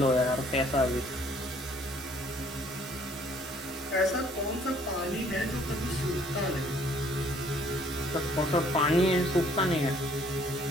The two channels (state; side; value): normal; both; correlation 0.61